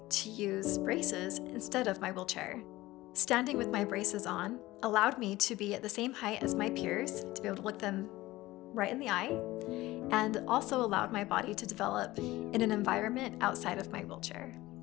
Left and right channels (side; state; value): right; quieter; 18.0 dB